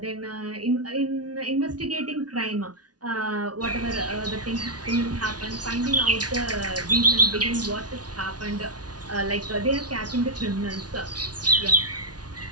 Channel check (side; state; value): left; late; 0.69 ms